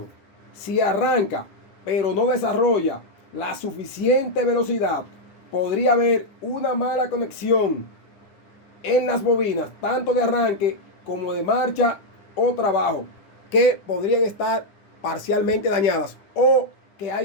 Si arranca pero no desarrolla la suficiente velocidad, podría haber una mala conexión en las bobinas, tanto de arranque como de marcha o trabajo, que podrían estar parcialmente dañadas o que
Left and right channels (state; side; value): late; right; 10 ms